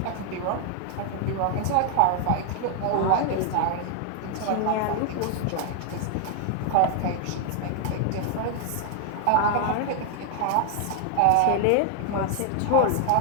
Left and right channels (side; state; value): both; different; correlation 0.00